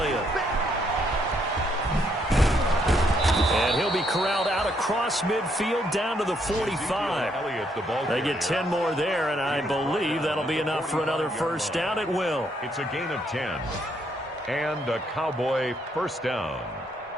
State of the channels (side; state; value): both; normal; correlation 0.73